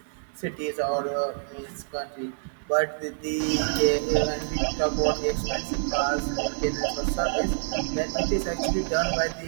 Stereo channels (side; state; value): left; silent; 60 dB below the other